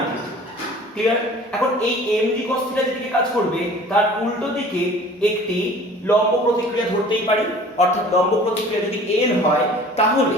থিটা। ক্লিয়ার? এখন এই mg cos থিটা যেদিকে কাজ করবে তার উল্টো দিকে একটি লম্ব প্রতিক্রিয়া ধরতেই পারি, অর্থাৎ লম্ব প্রতিক্রিয়া যদি n হয়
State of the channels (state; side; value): normal; both; correlation 0.47